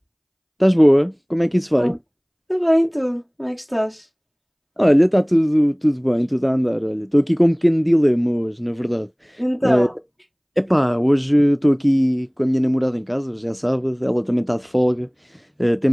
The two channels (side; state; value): both; identical; correlation 1.00